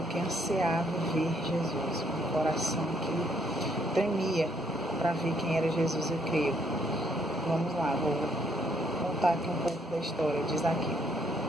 que ansiava ver Jesus, um coração que tremia para ver quem era Jesus, eu creio. Vamos lá, vou contar aqui um pouco da história de Zaqueu.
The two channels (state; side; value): normal; both; correlation 0.69